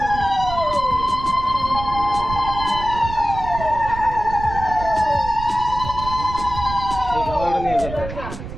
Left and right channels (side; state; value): right; noise; rumble, 9 dB below the sound